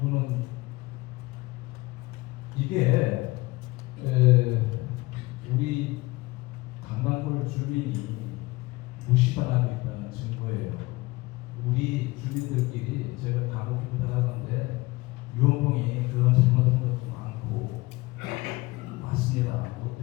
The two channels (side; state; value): right; quieter; 21.5 dB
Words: 이게 우리 강남골 주민이 무시당하고 있다는 증거예요. 우리 주민들끼리 제가 간혹 부탁하는데 유원봉이 그런 잘못한 것도 많고 맞습니다.